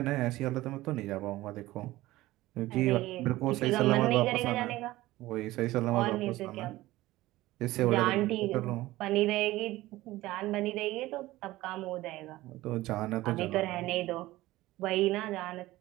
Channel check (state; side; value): quieter; left; 17.5 dB